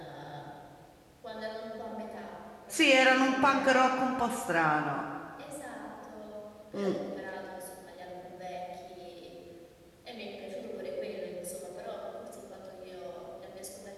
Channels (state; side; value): identical; both; correlation 1.00